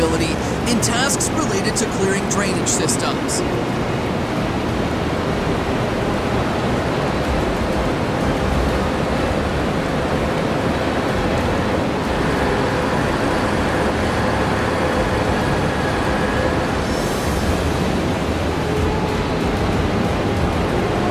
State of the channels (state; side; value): identical; both; correlation 1.00